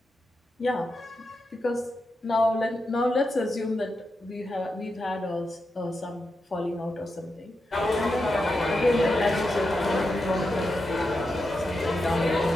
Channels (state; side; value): normal; both; correlation 0.87